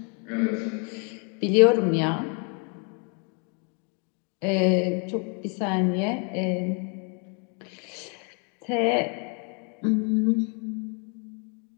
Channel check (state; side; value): quieter; right; 37.0 dB